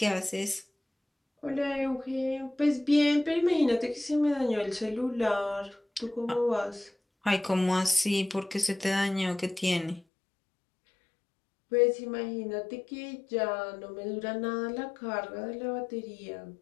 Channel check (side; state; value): right; drops out; at 10.0 s